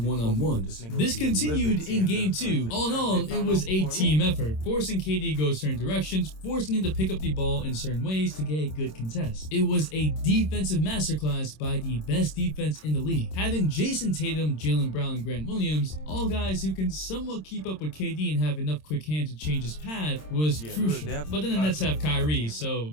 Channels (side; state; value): right; late; 26 ms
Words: This continued in game 2. All in all, it was a team effort, forcing KD to go certain directions, forcing him to pick up the ball in certain ways to get a good contest. It was a defensive masterclass by the best defense in the league. Having Jason Tatum, Jaylen Brown, and Grant Williams, all guys who can somewhat keep up with KD and have enough quick hands to change his path, was crucial. But then the Nets have Kyrie, so